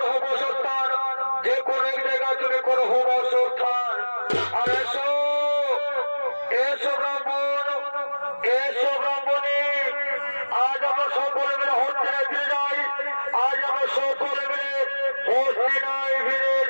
বসস্থান, যে কোনো এক জায়গায় তুমি করো বসত।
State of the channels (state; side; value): inverted; both; correlation -1.00